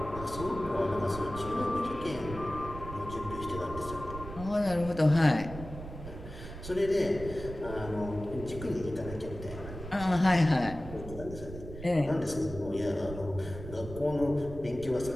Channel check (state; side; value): noise; right; rumble, 11 dB below the sound